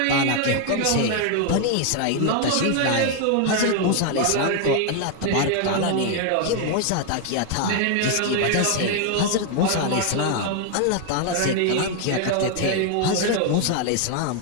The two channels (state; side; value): different; both; correlation 0.00